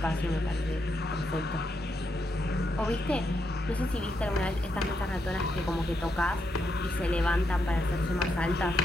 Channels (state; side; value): normal; both; correlation 0.81